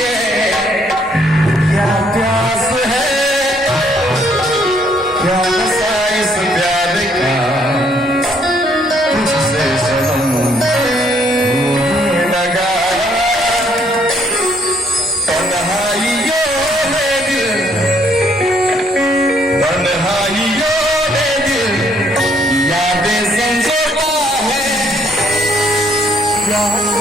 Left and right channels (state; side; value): normal; both; correlation 0.67